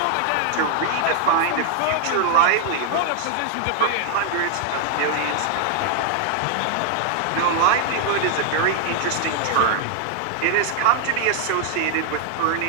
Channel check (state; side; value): different; both; correlation 0.00